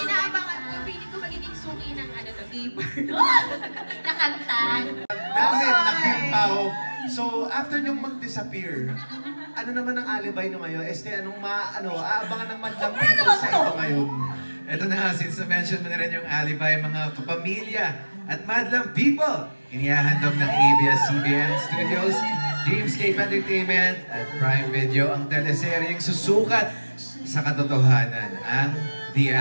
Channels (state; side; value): inverted; both; correlation -1.00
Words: inaabangan ko, feeling ko magiging suki ng ano to, gamer. Nakanta. Namin, nakimpaw. So, after nyong mag-disappear, ano naman ang alibay nyo ngayon? Anong aabangan ng madlang people sa ito ngayon? Ito na nga, since na-mention mo na rin yung alibay, mga kapamilya at madlang people, inihahandog ng ABS-CBN Studios, Dreamscape Entertainment at Prime Video ang teleseryeng susukat sa katotohanan, ang The